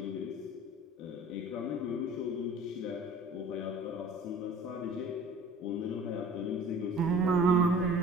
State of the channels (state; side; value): normal; both; correlation 0.46